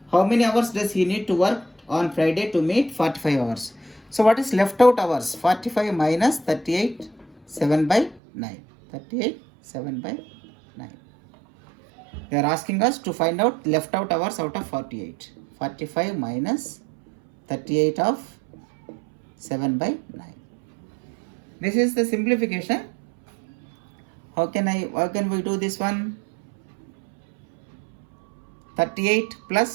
How many hours does he need to work on Friday to meet 45 hours? So what is left out hours? 45 minus 38 7 by 9. 38 7 by 9. They are asking us to find out left out hours out of 48. 45 minus 38 of 7 by 9. This is the simplification. How can we do this one? 38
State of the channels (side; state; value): left; drops out; at 8.2 s